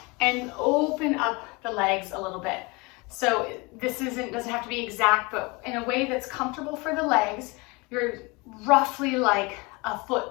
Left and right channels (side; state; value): right; quieter; 26.5 dB